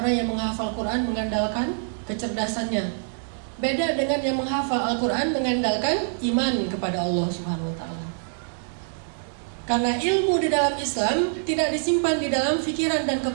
yang menghafal Quran mengandalkan kecerdasannya. Beda dengan yang menghafal Al-Quran mengandalkan iman kepada Allah Subhanahu wa ta'ala. Karena ilmu di dalam Islam tidak disimpan di dalam pikiran dan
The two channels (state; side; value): silent; left; digital silence